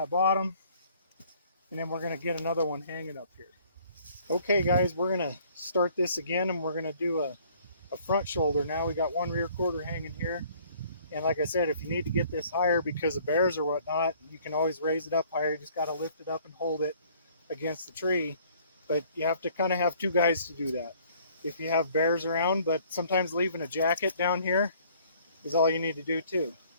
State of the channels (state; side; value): inverted; both; correlation -0.58